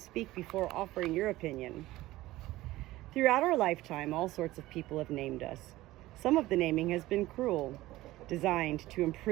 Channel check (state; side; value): quieter; left; 17.2 dB